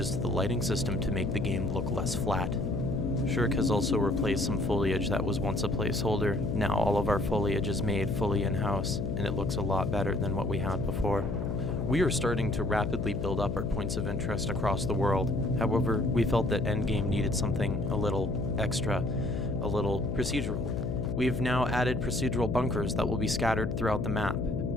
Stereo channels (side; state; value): left; noise; hum, 2 dB below the sound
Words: to the lighting system to make the game look less flat. Shirk has also replaced some foliage that was once a placeholder. Now all of our foliage is made fully in-house, and it looks a lot better than what we had before. We are starting to rapidly build up our points of interest across the world. However, we felt that Endgame needed something a little extra, a little procedural. We've now added procedural bunkers that will be scattered throughout the map.